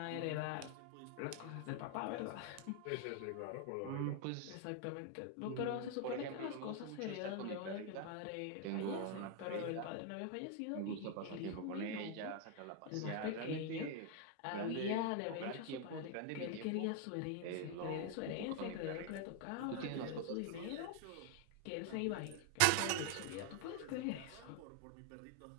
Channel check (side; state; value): both; different; correlation 0.00